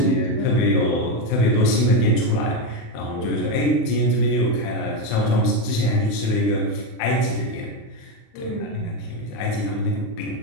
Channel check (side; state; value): right; late; 36 ms